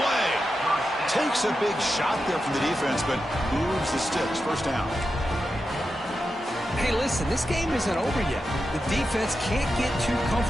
Takes a big shot there from the defense, but moves the sticks. First down. Hey, listen, this game isn't over yet. The defense can't get too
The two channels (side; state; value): both; normal; correlation 0.89